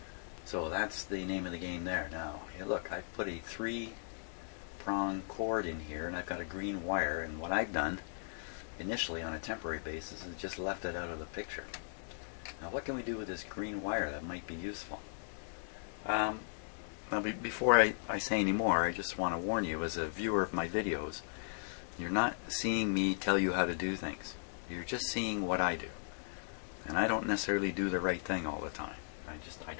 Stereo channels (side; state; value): right; silent; digital silence